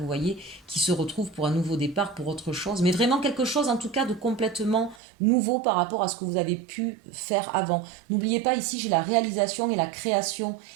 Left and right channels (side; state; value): left; drops out; at 5.0 s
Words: voyez, qui se retrouvent pour un nouveau départ, pour autre chose. Mais vraiment quelque chose, en tout cas, de complètement nouveau par rapport à ce que vous avez pu faire avant. N'oubliez pas, ici, j'ai la réalisation et la création.